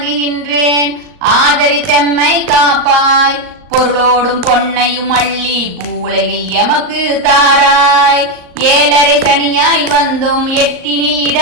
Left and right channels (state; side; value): late; left; 38 ms